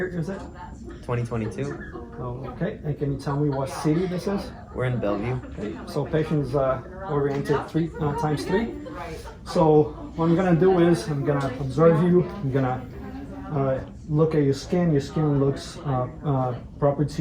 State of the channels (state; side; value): identical; both; correlation 1.00